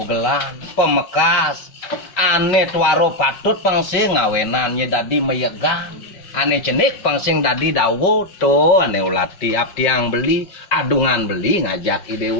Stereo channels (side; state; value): right; late; 5.1 ms